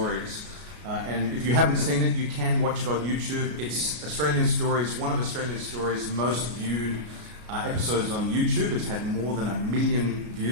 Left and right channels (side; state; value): left; late; 33 ms